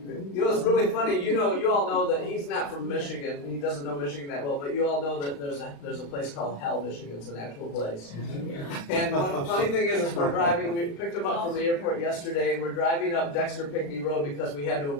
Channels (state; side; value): late; right; 35 ms